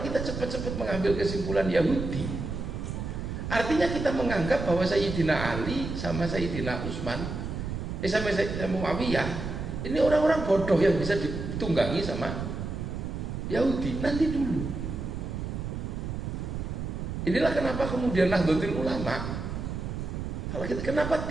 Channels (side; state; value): right; noise; rumble, 5 dB below the sound